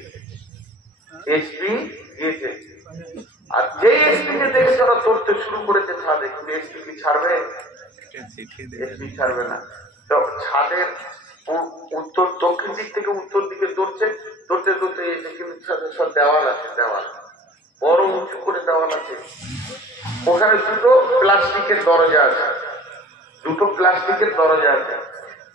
আর যে এসপি কে দেখে তারা ধরতে শুরু করেছে ছাদে, কিন্তু এসপি কি ছাড়বে? এসপি ছাড়বে না। তো ছাদের উত্তর দক্ষিণ দিক থেকে উত্তর দিকে দৌড়তে এসে, কিন্তু সব দেওয়াল আছে, দেওয়াল বড় উঁচু করে দেওয়াল আছে, ওখানে দুটো প্লাস্টিকের দরজা আছে,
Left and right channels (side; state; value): both; normal; correlation 0.44